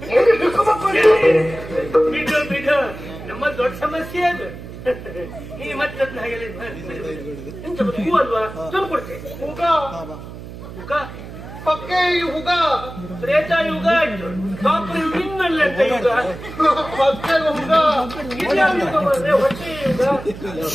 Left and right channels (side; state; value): right; noise; hum, 13 dB below the sound